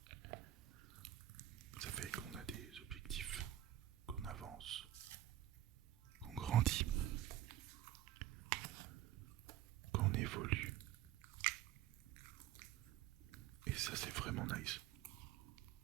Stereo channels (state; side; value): quieter; left; 12.8 dB